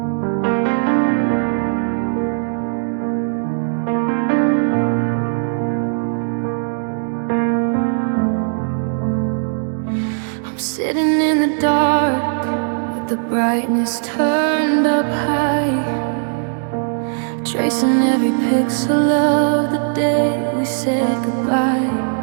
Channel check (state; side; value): silent; left; digital silence